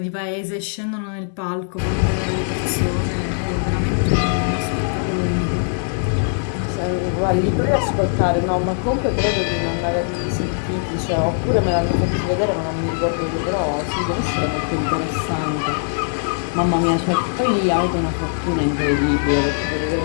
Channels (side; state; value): right; silent; digital silence